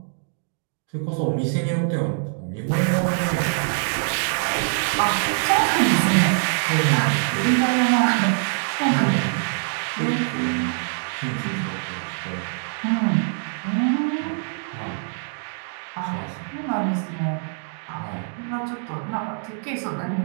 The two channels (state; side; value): silent; left; 62 dB below the other